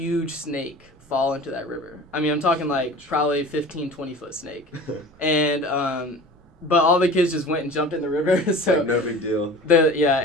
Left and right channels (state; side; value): normal; both; correlation 0.39